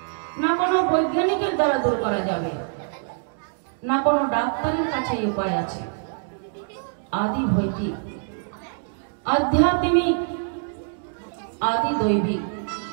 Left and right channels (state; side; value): silent; left; digital silence